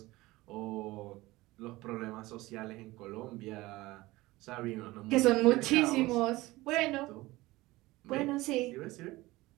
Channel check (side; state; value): left; quieter; 19.5 dB